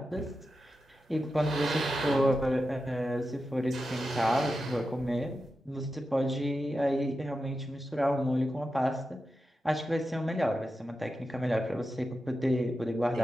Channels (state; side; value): normal; both; correlation 0.90